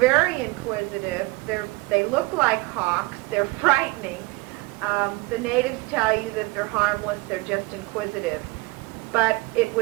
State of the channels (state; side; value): quieter; left; 23.7 dB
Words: inquisitive. They look like hawks. They're frightening. The natives tell you that they're harmless. They're just inquisitive. But it